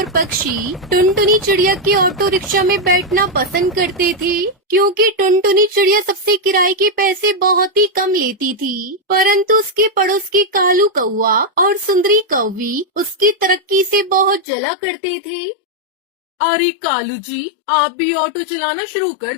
पक्षी टुनटुनी चिड़िया के ऑटो रिक्शा में बैठना पसंद करते थे, क्योंकि टुनटुनी चिड़िया सबसे किराए के पैसे बहुत ही कम लेती थी। परंतु उसके पड़ोस के कालू कौवा और सुंदरी कौवी उसकी तरक्की से बहुत जला करते थे। अरे कालू जी, आप भी ऑटो चलाना शुरू कर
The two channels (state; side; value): drops out; right; at 14.5 s